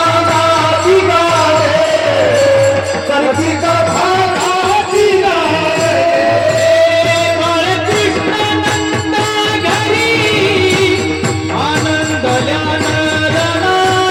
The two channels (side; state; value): both; identical; correlation 1.00